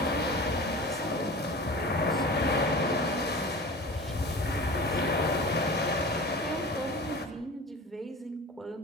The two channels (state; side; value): normal; both; correlation 0.36